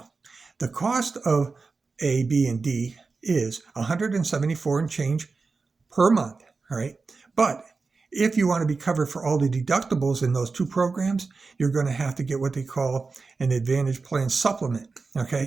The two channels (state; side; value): quieter; left; 4.3 dB